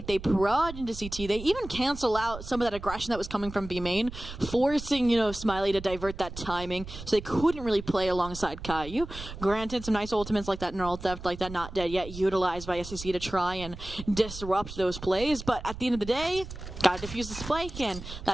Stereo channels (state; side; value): noise; right; rumble, 11 dB below the sound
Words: they prod into CT, they even cancel out some of that aggression that was coming from B main, forcing, Smiley to divert that timing, so they couldn't really play alongside Caillou. Granted, some nice ultimates like that Neural Theft, like that Not Dead Yet, utilized by SEC to try and disrupt those plays, but at the end of the day, gotta defuse the spike, and